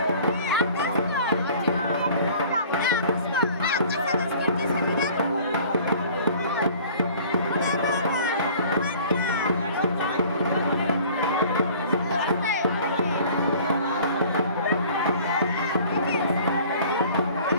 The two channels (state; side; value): inverted; both; correlation -0.49